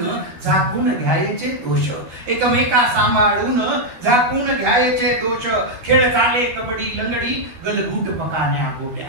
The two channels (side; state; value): left; late; 13 ms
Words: झाकून घ्यायचे दोष एकमेका सांभाळून झाकून घ्यायचे दोष खेळ झाले कबड्डी लंगडी गलगूट पकाण्या गोट्या